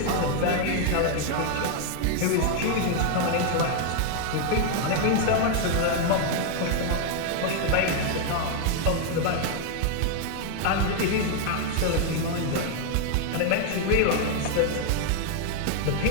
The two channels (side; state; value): both; different; correlation 0.00